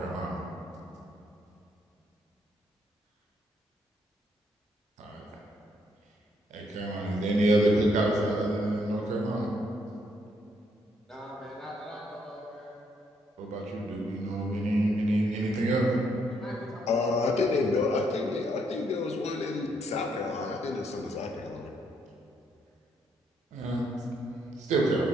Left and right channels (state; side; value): normal; both; correlation 0.73